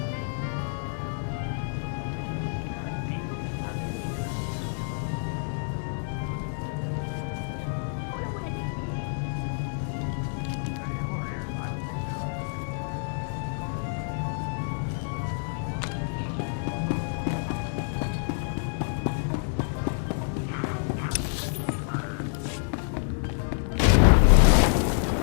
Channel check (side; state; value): right; silent; digital silence